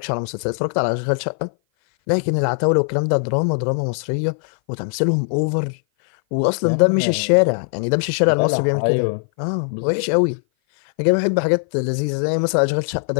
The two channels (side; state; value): right; silent; 58 dB below the other